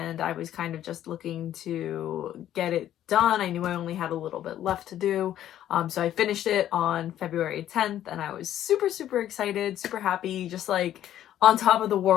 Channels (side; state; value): right; quieter; 11.8 dB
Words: I was kind of just looking to get it done. I knew I only had a little bit left to do, so I finished it on February 10th and I was super excited, super happy, just on top of the